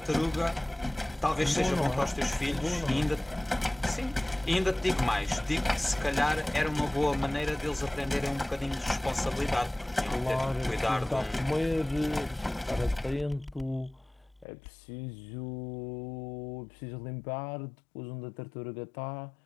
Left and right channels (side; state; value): right; drops out; at 14.5 s